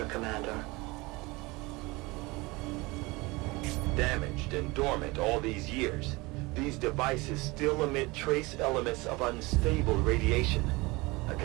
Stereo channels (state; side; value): quieter; left; 23.5 dB